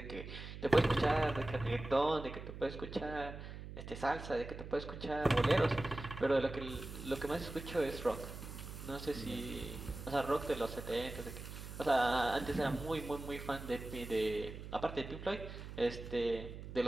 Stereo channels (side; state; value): right; noise; hum, 10 dB below the sound